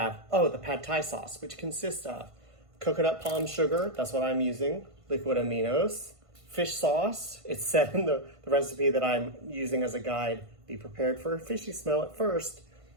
Oh, the pad thai sauce, which consists of coconut palm sugar, that's what I'm using, liquid aminos, fish sauce. It's said in the recipe that I'm using as a guide, be prepared for a fishy smell at first,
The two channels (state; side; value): late; left; 1.5 ms